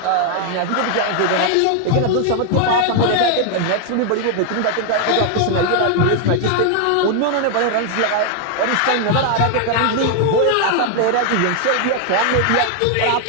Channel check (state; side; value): different; both; correlation 0.00